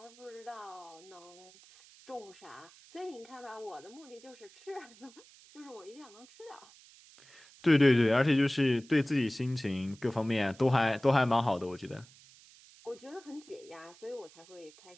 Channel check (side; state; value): right; noise; hiss, 24 dB below the sound